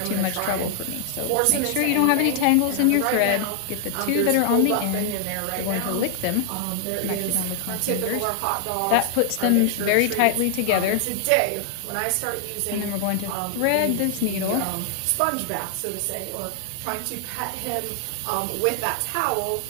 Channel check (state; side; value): different; both; correlation 0.00